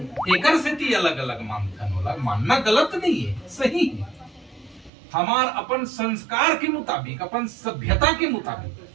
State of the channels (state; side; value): drops out; left; at 4.9 s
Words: एकर से ती अलग अलग मानथन होला। मानना गलत नहीं है, सही है। हमार अपन संस्कार के मुताबिक, अपन सभ्यता के